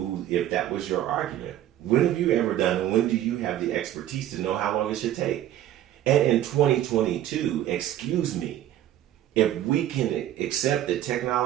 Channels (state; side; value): quieter; left; 12.4 dB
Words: if that was your argument, when have you ever done, and when do you have the expertise to know how long it should take? And in 2022, excuse me, if we can accept that